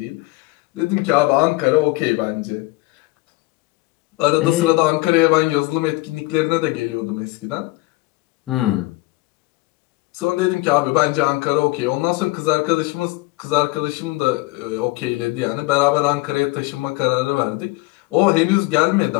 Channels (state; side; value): quieter; right; 22.0 dB